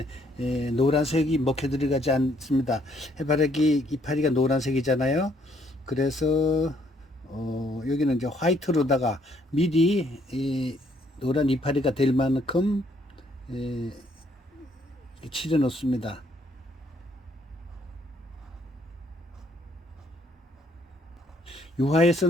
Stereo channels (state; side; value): normal; both; correlation 0.68